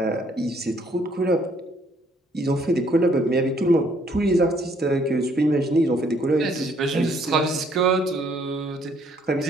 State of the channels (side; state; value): both; normal; correlation 0.65